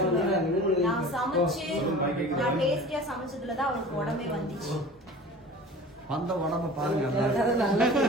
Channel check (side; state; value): both; normal; correlation 0.40